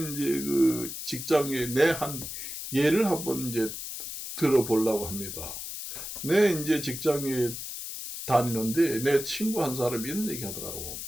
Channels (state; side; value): noise; left; hiss, 7 dB below the sound